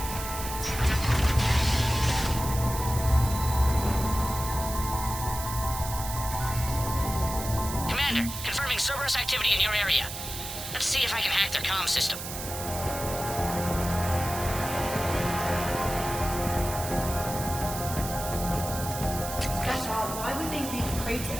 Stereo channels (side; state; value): right; noise; hiss, 8 dB below the sound